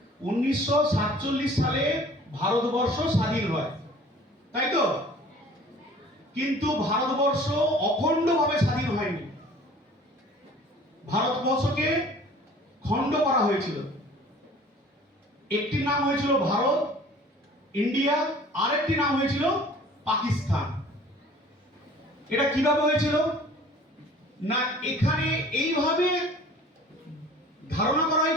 1947 সালে ভারতবর্ষ স্বাধীন হয়, তাই তো? কিন্তু ভারতবর্ষ অখণ্ডভাবে স্বাধীন হয়নি। ভারতবর্ষকে খণ্ড করা হয়েছিল। একটি নাম হয়েছিল ভারত, ইন্ডিয়া, আরেকটি নাম হয়েছিল পাকিস্তান। এটা কিভাবে হয়েছিল না, এখানে এইভাবে ধারণা করা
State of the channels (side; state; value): both; normal; correlation 0.49